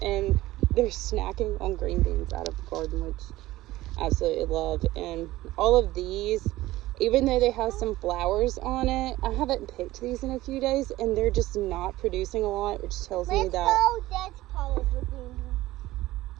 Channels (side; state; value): left; quieter; 17.0 dB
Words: and they're snacking on green beans out of the garden, which I absolutely love. And all of these, even though they have some flowers on it, I haven't picked these in a few days, and they're just not producing a lot, which tells me that. Let's go that part of the green beans.